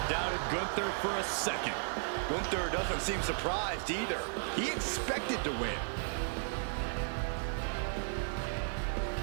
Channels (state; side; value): silent; left; digital silence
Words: doubted Gunther for a second. Gunther doesn't seem surprised either. He expected to win.